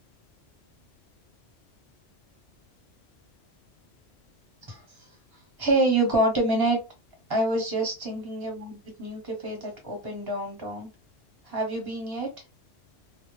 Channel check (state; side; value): normal; both; correlation 0.19